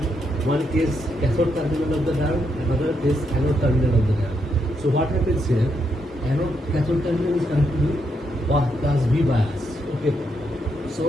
one case cathode terminal of the diode, another case anode terminal of the diode. So what happens here? Anode cathode terminal is connected with plus V bias. Okay.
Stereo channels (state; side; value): normal; both; correlation 0.79